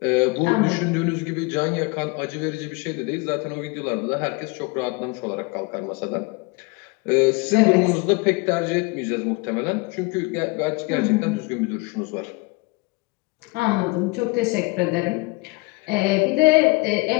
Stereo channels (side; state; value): right; quieter; 26.3 dB